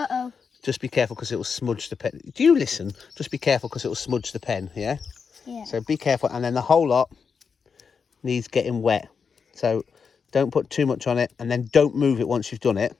just be careful because it will smudge the pen. Do you listen? Just be careful because it will smudge the pen. Yeah. Yeah. So be careful, and then the whole lot needs getting wet. So don't put too much on it, and then don't move it once you've done it.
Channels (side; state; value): right; quieter; 5.9 dB